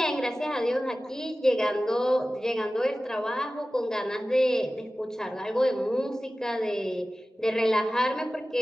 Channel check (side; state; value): both; normal; correlation 0.96